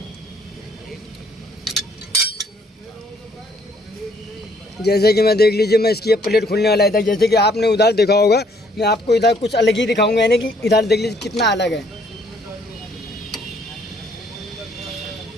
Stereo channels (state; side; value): normal; both; correlation 0.65